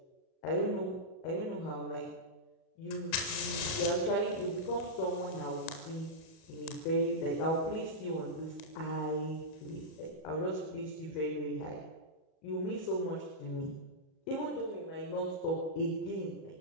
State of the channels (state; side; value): late; right; 38 ms